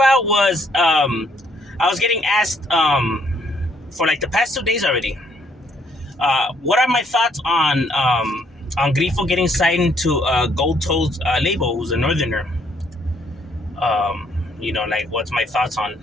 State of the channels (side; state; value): both; normal; correlation 0.68